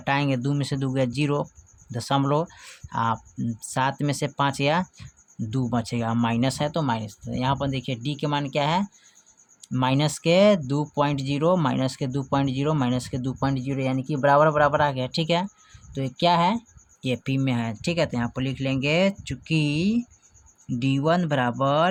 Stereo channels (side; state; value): both; identical; correlation 1.00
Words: 2 में से 2 गया 0 दशमलव, 7 में से 5 या 2 बचेगा, माइनस है तो माइनस। तो यहाँ पर देखिए D के मान क्या है, माइनस के 2.0 माइनस के 2.0 माइनस के 2.0 यानी कि बराबर बराबर आ गया, ठीक है। तो ये क्या है, AP में है, ठीक है। तो यहाँ पर लिख लेंगे चूँकि D1